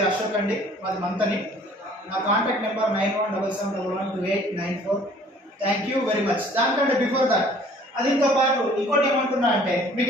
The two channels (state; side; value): normal; both; correlation 0.54